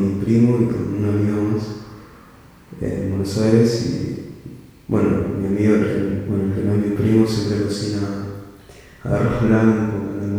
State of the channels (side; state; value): both; identical; correlation 1.00